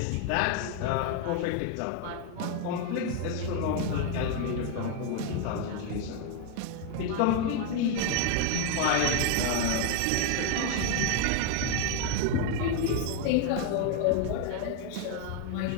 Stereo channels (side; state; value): both; different; correlation 0.01